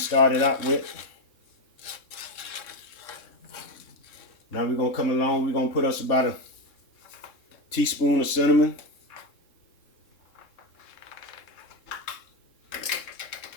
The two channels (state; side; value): late; right; 3.7 ms